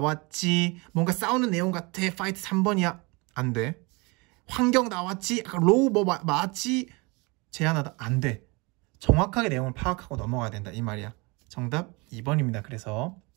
뭔가 싸우는 내용 같아, fight 3번이야. 안 돼. 환경 나왔지, law 뭐 맞지, 제안하다. 안 돼. 정확하게 내용을 파악하고 넘어가야 된다. 이 말이야. 정답 2번입니다. 그래서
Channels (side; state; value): left; quieter; 27.4 dB